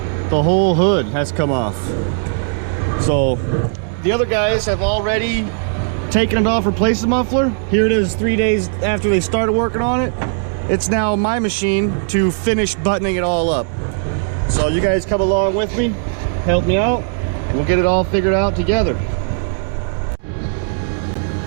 The whole hood has come off. So the other guys have already taken it off, replaced the muffler. Here it is 3 days after they started working on it. It's now my machine to finish buttoning it all up. So you guys come along with me, help me out, and we'll get it all figured out together.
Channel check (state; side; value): silent; left; 68 dB below the other